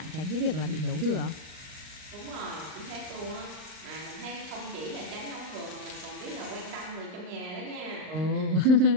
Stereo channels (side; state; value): left; late; 39 ms